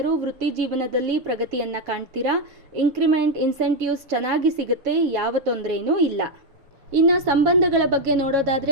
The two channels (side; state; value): left; late; 7.2 ms